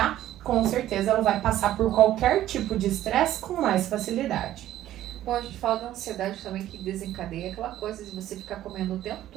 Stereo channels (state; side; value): quieter; left; 13.2 dB